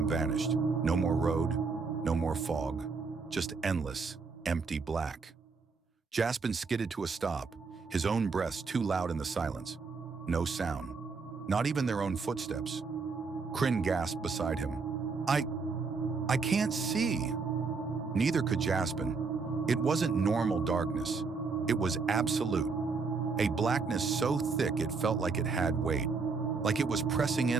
vanished. No more road, no more fog, just endless, empty black. Jaspen skidded to a stop, his own breaths too loud in the silence. No sound, not even their own footsteps. Krynn gasped beside him. I can't see. Neither could Jaspen. It wasn't normal darkness. It was absolute. A blackness so thick it felt like it had weight, like it was pressing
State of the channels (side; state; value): left; quieter; 4.7 dB